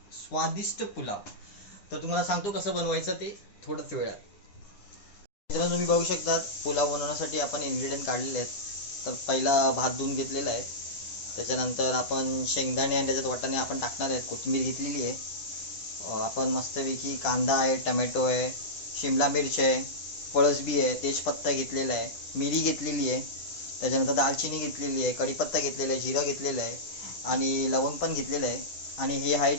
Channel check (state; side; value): late; right; 10 ms